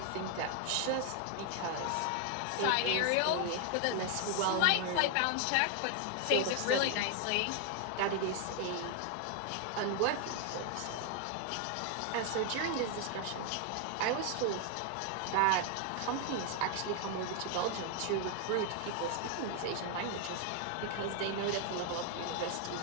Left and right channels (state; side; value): different; both; correlation 0.01